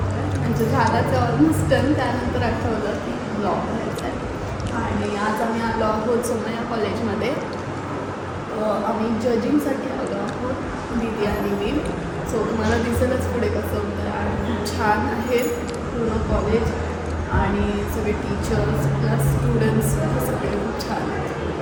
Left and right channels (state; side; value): identical; both; correlation 1.00